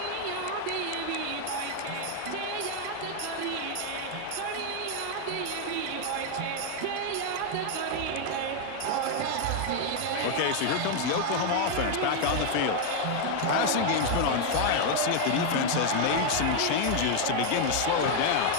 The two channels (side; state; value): both; different; correlation 0.01